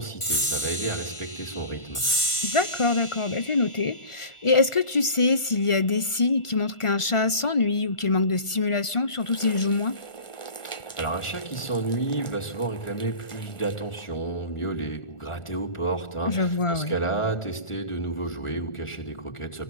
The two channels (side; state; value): right; late; 1.4 ms